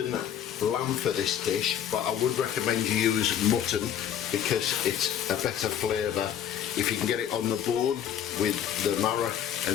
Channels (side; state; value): right; quieter; 9.6 dB